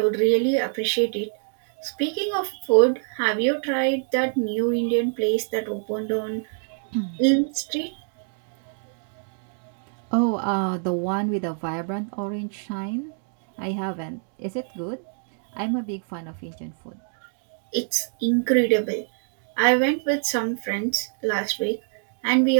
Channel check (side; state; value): left; silent; 61 dB below the other